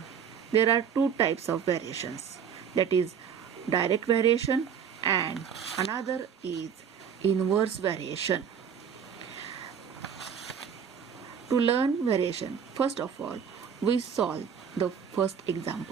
there are two types of variations, that is direct variation and another is inverse variation. To learn variation, first of all, we solve the first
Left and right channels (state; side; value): quieter; left; 7.5 dB